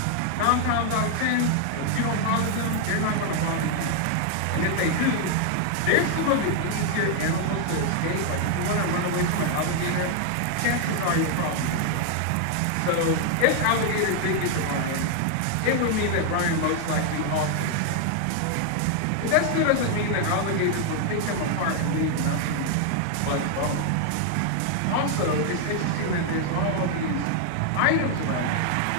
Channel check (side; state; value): both; different; correlation 0.00